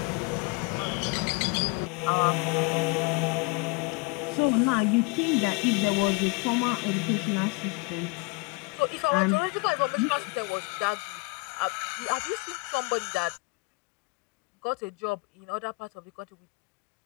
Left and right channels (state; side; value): quieter; right; 28.4 dB